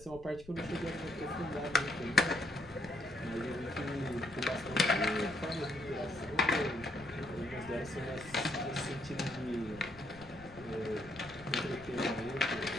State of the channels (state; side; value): noise; left; rumble, 19 dB below the sound